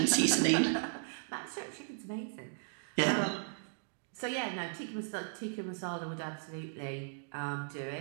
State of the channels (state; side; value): silent; left; digital silence